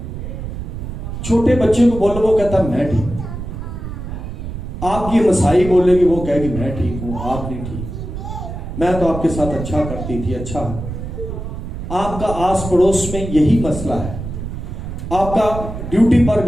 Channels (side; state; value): right; noise; rumble, 7 dB below the sound